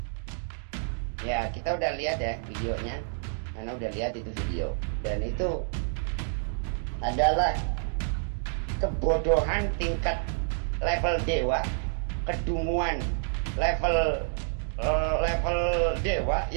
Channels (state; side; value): silent; left; digital silence